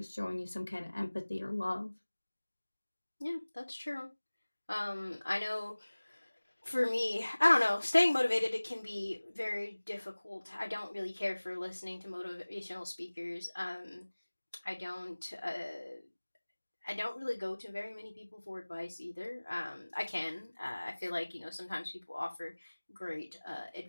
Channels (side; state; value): both; inverted; correlation -1.00